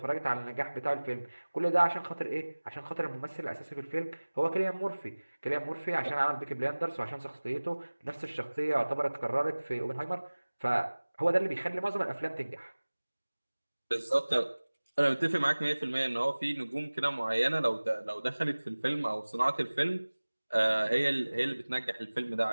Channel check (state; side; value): inverted; both; correlation -1.00